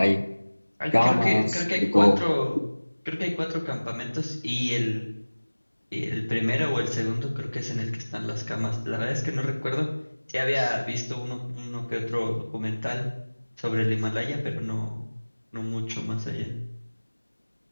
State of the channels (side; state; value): both; inverted; correlation -1.00